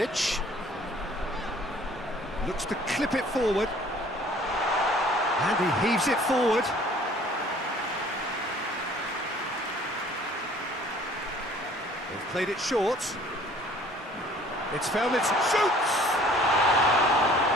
looks to clip it forward, and he heaves it forward. They've played it short. It's found its shoots.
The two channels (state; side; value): normal; both; correlation 0.53